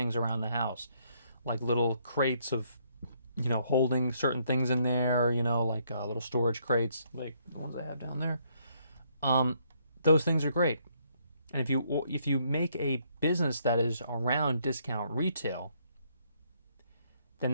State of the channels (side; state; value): both; inverted; correlation -0.70